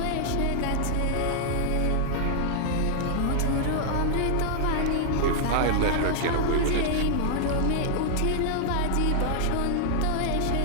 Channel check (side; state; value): both; different; correlation -0.01